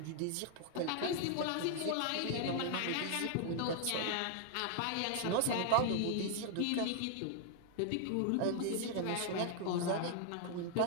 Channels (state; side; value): different; both; correlation 0.00